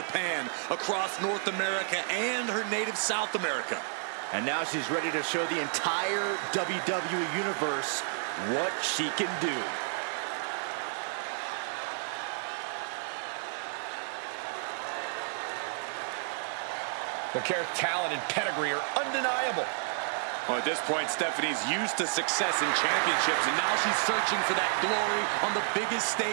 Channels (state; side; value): silent; left; 57 dB below the other